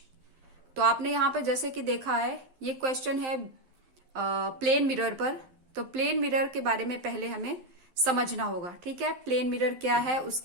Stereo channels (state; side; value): late; left; 12 ms